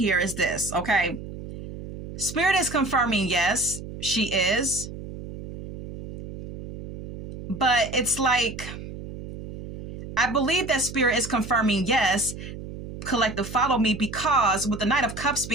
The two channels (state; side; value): noise; right; hum, 11 dB below the sound